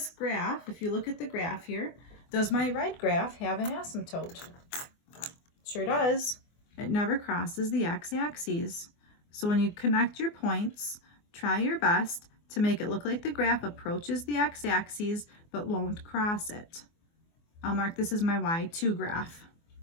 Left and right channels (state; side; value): late; right; 24 ms